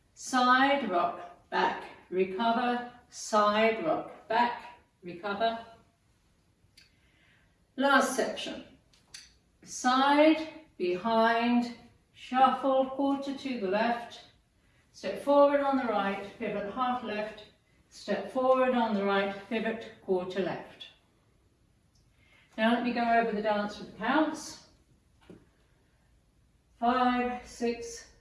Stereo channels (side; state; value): both; identical; correlation 1.00